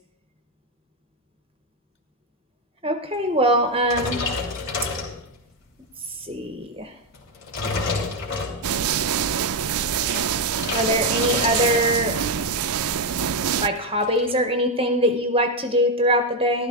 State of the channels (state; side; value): normal; both; correlation 0.05